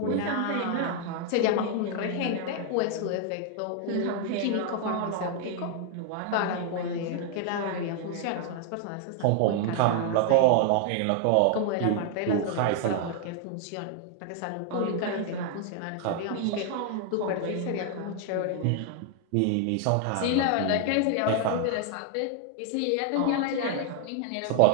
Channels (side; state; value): both; different; correlation 0.00